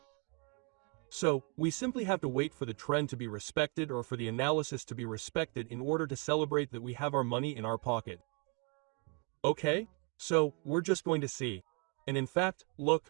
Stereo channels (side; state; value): left; quieter; 34.8 dB